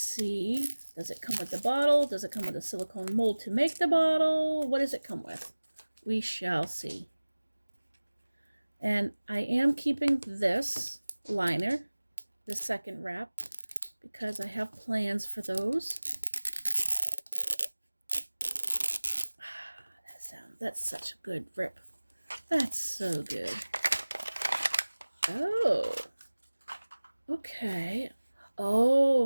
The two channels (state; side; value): inverted; both; correlation -1.00